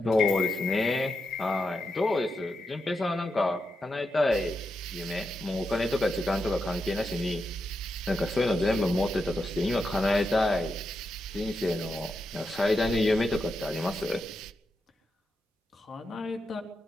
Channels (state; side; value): normal; both; correlation 0.86